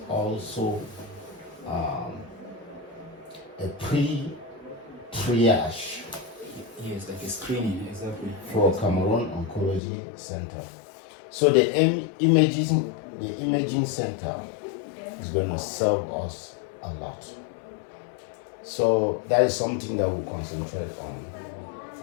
also a pre-triage. Yes, like a screening, exactly. For Cameroon Oncology Center. So the imaging center is going to serve us a lot. So that is something that we'll concentrate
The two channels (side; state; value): right; drops out; at 9.8 s